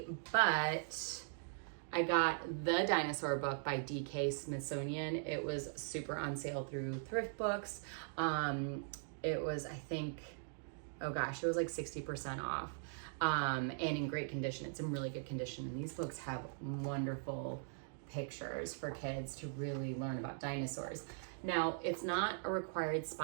but I got the Dinosaur book by D.K. Smithsonian. It was super on sale through thrift books. It was, I think, oh gosh, it was like 60% off, and in great condition. It's in really good condition, and these books have wonderful pictures for kids to really learn about dinosaurs. Now, it's not a required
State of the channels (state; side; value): silent; left; digital silence